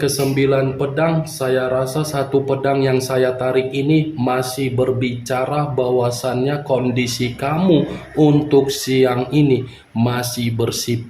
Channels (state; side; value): identical; both; correlation 1.00